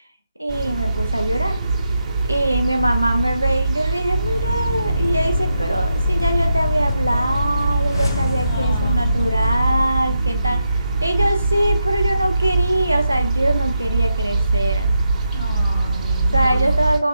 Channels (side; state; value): both; inverted; correlation -0.84